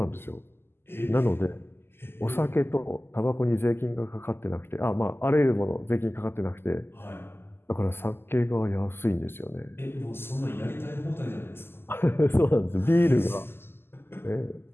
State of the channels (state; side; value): late; right; 0.11 ms